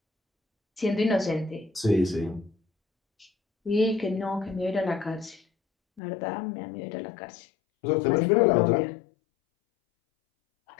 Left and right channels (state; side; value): drops out; right; at 6.0 s